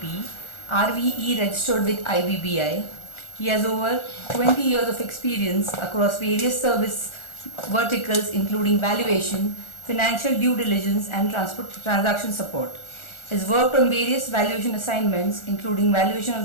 RVE registered with IBBI. He has over 20 years of experience across various service verticals including valuation, financial due diligence and transaction support. He has worked on various valuation assignments including valuation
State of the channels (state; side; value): late; right; 1.4 ms